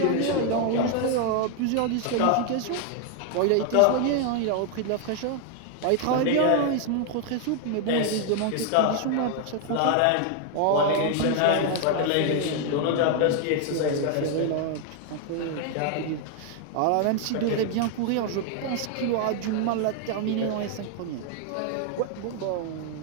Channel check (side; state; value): both; different; correlation 0.00